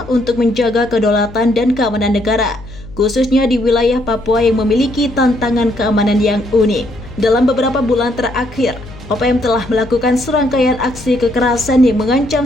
untuk menjaga kedaulatan dan keamanan negara, khususnya di wilayah Papua yang memiliki tantangan keamanan yang unik. Dalam beberapa bulan terakhir, OPM telah melakukan serangkaian aksi kekerasan yang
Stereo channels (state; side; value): noise; left; hum, 17 dB below the sound